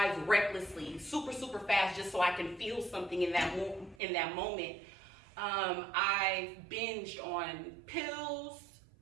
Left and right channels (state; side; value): drops out; left; at 4.0 s